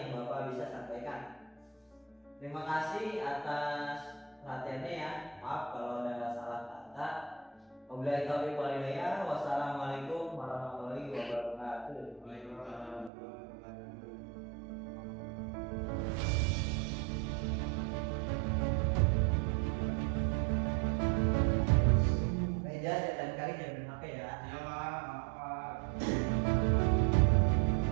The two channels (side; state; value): left; drops out; at 13.1 s